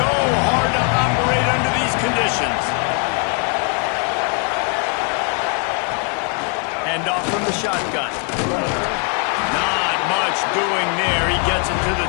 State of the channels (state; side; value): quieter; right; 38.3 dB